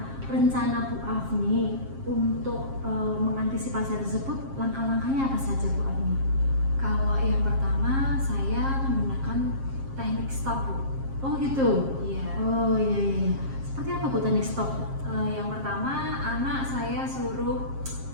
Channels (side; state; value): left; late; 7.5 ms